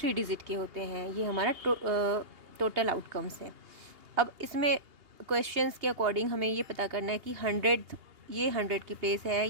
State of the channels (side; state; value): left; late; 2.8 ms